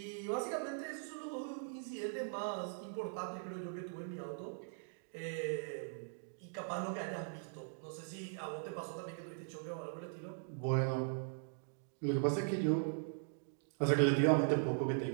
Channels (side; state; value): left; silent; digital silence